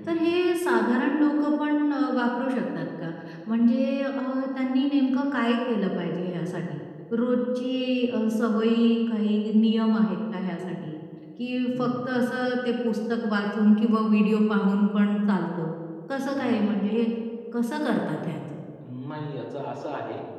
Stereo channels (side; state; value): both; identical; correlation 1.00